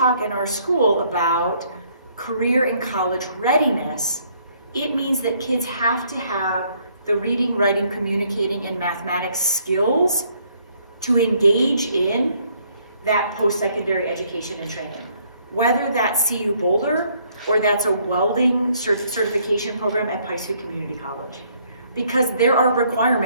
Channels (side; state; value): both; inverted; correlation -0.66